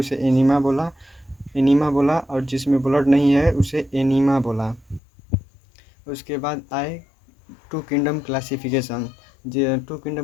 एनिमा बोला और जिसमें ब्लड नहीं है उसे एनीमा बोला। उसके बाद आए two kingdom classification. Two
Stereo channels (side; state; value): right; drops out; at 5.0 s